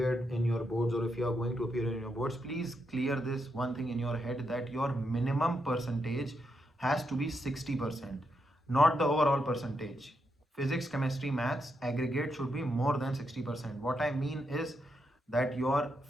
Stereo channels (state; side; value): normal; both; correlation 0.82